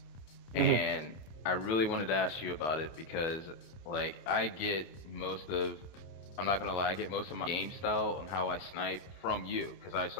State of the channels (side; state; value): right; late; 30 ms